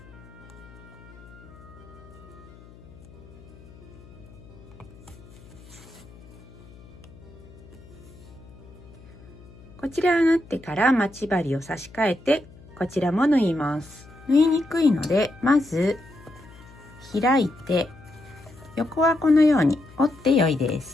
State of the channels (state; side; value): noise; left; hum, 21 dB below the sound